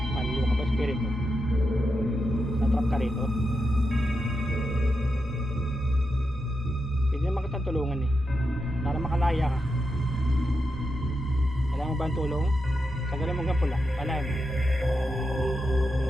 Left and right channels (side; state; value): both; normal; correlation 0.87